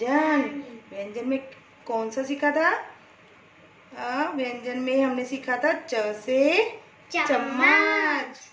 में कौन सा सीखा था? व्यंजन में हमने सीखा था च से चम्मच,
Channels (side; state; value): both; identical; correlation 1.00